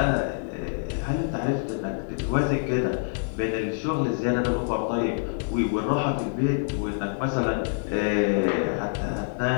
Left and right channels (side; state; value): right; silent; digital silence